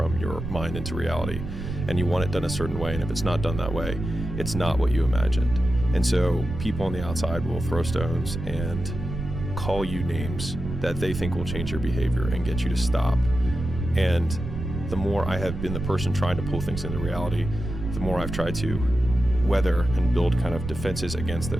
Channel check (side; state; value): right; noise; rumble, 6 dB below the sound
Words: your mind into reality and you want it done a certain way. And if it's not done that way, it's not what you imagined. And so people on the outside will throw stones and call you names that they think will change your behavior and get you to stop. And the more I have been the person trying to pull things into reality, the more I've tried to weather and build kind of defenses against